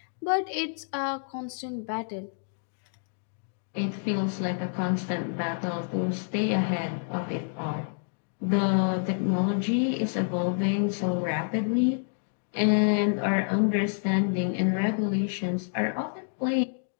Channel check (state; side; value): silent; right; digital silence